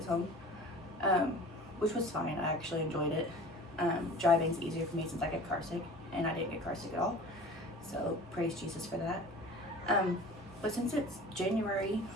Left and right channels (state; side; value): normal; both; correlation 0.42